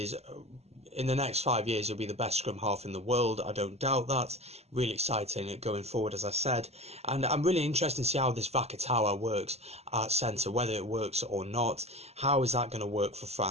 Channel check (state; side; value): late; left; 0.30 ms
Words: in the next 5 years he'll be the best scrum half in the world. I don't doubt that. Really exciting going forward, as I said, and I'm really interested to see how this Vakatawa works at centre, whether it works or not. How is that going to work for